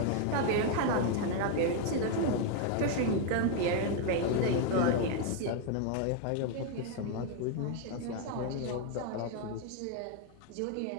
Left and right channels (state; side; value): different; both; correlation 0.01